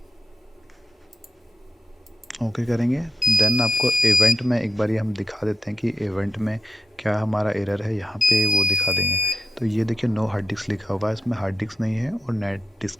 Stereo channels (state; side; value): normal; both; correlation 0.88